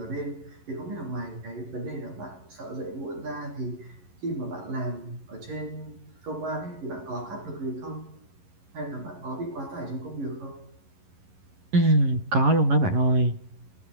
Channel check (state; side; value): late; left; 11 ms